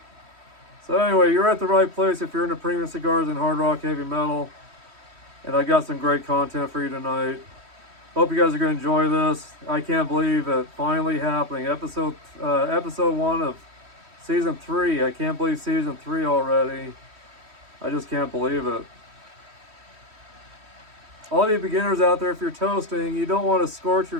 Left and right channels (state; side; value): late; left; 3.1 ms